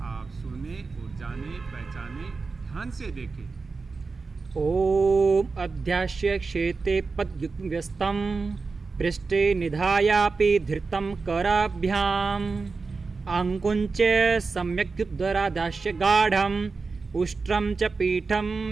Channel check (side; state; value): left; quieter; 4.3 dB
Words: आप सुने और जाने पहचाने, ध्यान से देखें। ओम अध्यास्य क्षेते पद्युक्तम पृष्ठे निधायापि धृतं कराभ्याम आंकुंच सम्यक्युद्धरादास्य गाढ़म उष्ट्रम च पीठम